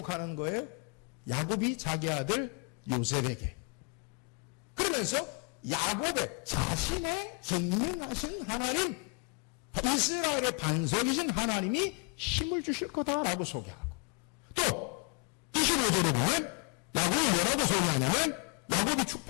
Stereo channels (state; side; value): quieter; right; 34.1 dB